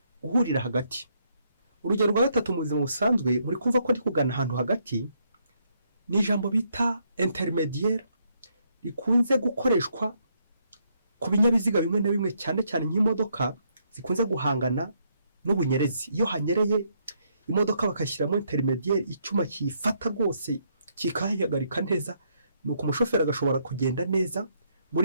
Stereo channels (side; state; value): both; inverted; correlation -0.74